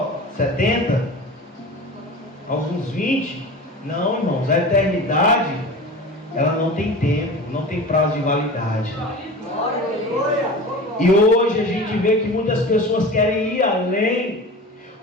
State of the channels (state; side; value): normal; both; correlation 0.34